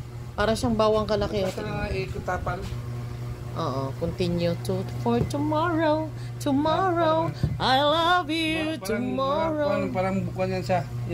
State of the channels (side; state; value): both; identical; correlation 1.00